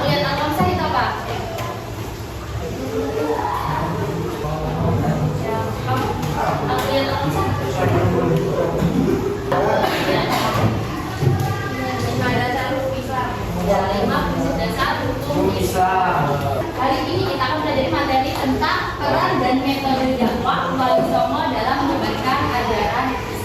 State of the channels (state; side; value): identical; both; correlation 1.00